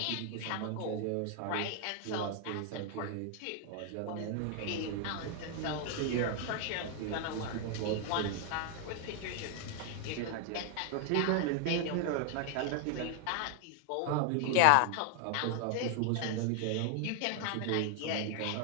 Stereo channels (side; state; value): both; different; correlation 0.00